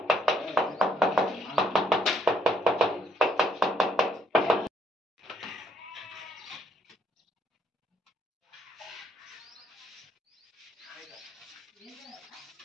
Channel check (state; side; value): normal; both; correlation 0.70